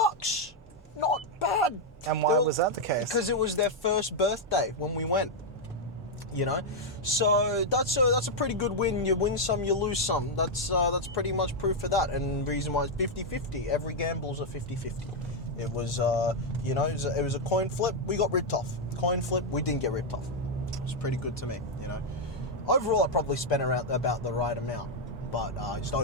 Not bad. And why was that the case? Because it was their first birthday when we went. You know, so that's a pretty good win. You win some, you lose some. That's pretty much proof of that. And the reason why it's 50-50. Every gamble's a 50-50. It was it was a coin flip. We got ripped off. Coin flip. We didn't get ripped off. It was pretty good to me. You know, overall I probably spent around about the right amount, but I just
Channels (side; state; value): both; normal; correlation -0.01